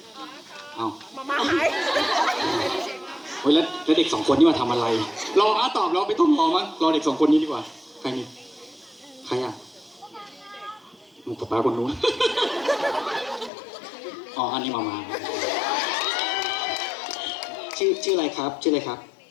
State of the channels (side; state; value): right; drops out; at 13.5 s